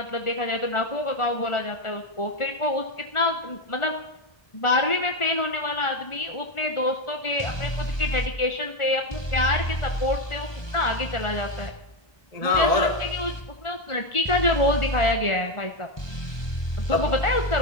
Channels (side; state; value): right; late; 1.4 ms